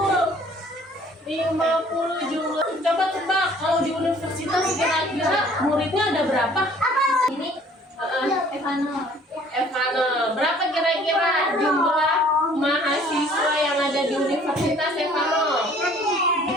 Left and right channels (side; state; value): both; normal; correlation 0.55